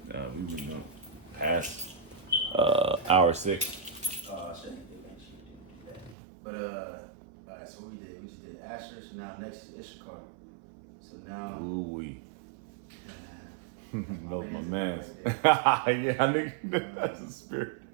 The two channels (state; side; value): drops out; left; at 6.2 s